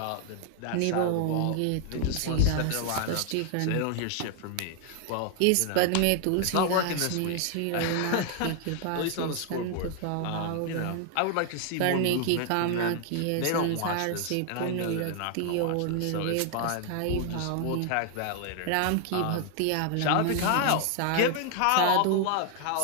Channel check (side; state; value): both; different; correlation 0.00